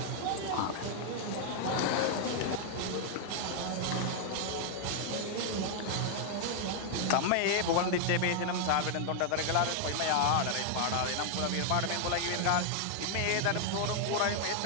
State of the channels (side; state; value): both; different; correlation 0.00